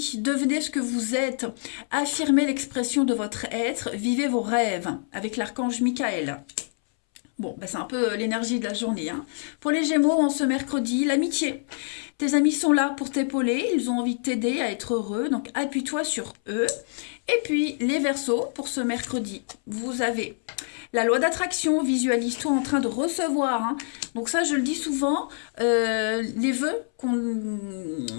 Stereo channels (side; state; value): right; silent; 61 dB below the other